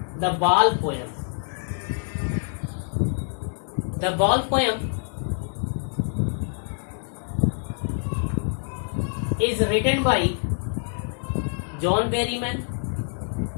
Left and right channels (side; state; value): right; silent; digital silence